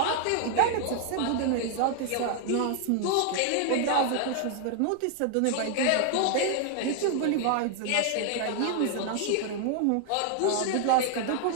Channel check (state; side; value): different; both; correlation 0.00